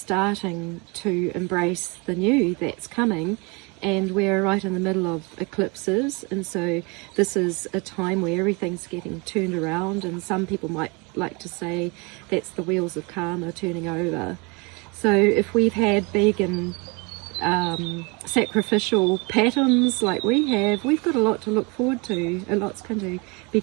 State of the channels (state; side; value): quieter; left; 29.4 dB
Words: to embrace the new that's coming. And we're right in the middle of eclipses, and so this is a time where everything's getting turned around, and some people might like to say that's the wheels of karma turning over. So if we've had big and sacrificial patterns like we have, we've got a lot to look forward to. A lot's going to be